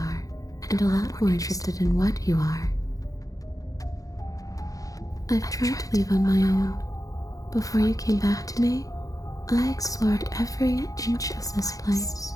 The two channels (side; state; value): right; late; 0.17 ms